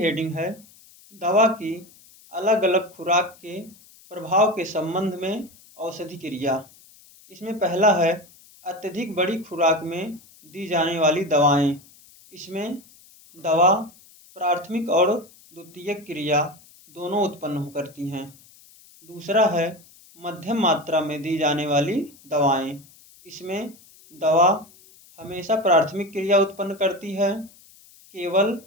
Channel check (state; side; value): noise; left; hiss, 25 dB below the sound